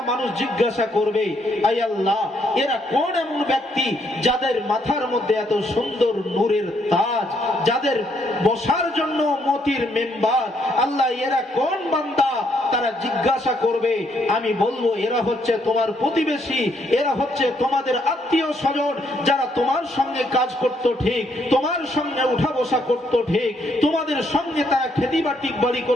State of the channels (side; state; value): both; normal; correlation 0.72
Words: মানুষ জিজ্ঞাসা করবে, আয় আল্লাহ, এরা কোন এমন ব্যক্তি যাদের মাথার মধ্যে এত সুন্দর নূরের তাজ, যাদের বসার জন্য মতির মেম্বার, আল্লাহ এরা কোন বান্দা? তারা জিজ্ঞাসা করবে, আমি বলবো এরা হচ্ছে তোমার প্রতিবেশী, এরা হচ্ছে তোমাদের আত্মীয় স্বজন, যারা তোমার সঙ্গে কাজ করতো ঠিক, তোমার সঙ্গে উঠা বসা করতো ঠিক, তোমাদের সঙ্গে তারা খেতি বাড়ি